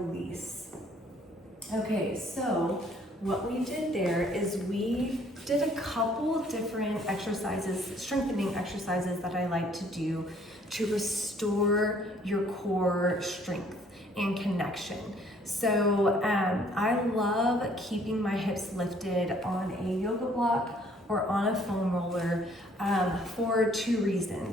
Okay, so what we did there is we did a couple different exercises, strengthening exercises that I like to do to restore your core strength and connection. So I love keeping my hips lifted on a yoga block or on a foam roller for 2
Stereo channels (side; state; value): both; normal; correlation 0.61